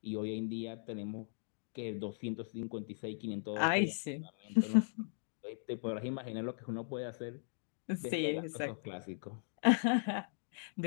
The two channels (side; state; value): right; silent; digital silence